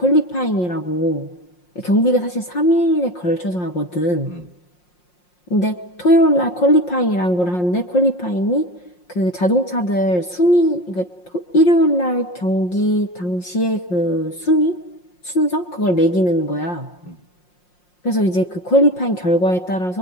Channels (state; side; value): late; right; 5.6 ms